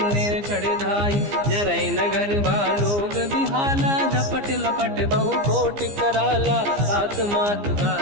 चढ़ धाई। जरै नगर बालोग बिहाला, झपट लपट बहु कोटि कराला। सात मात का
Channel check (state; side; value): late; left; 15 ms